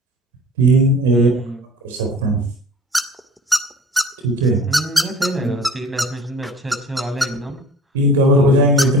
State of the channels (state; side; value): normal; both; correlation 0.44